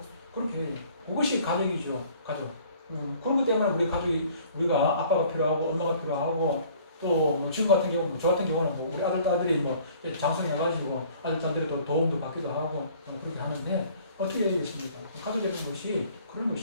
그렇게 해요. 그것이 가족이죠. 가족. 그렇기 때문에 우리가 아빠가 필요하고, 엄마가 필요하고, 또 지금 같은 경우, 저 같은 경우는 우리 아들, 딸들이 장성해가지고 아들, 딸들이 또 도움도 받기도 하고, 그렇게 하는데, 어떻게 해야 되겠습니까? 가족의 것이 그런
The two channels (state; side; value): inverted; both; correlation -0.54